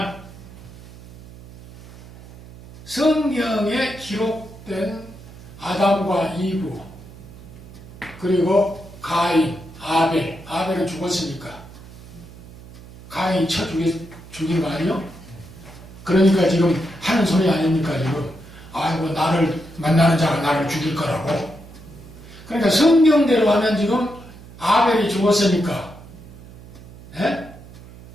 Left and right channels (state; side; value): noise; right; hum, 18 dB below the sound